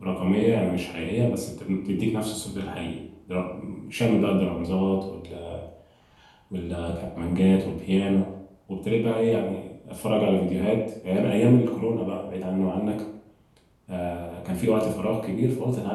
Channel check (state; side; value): identical; both; correlation 1.00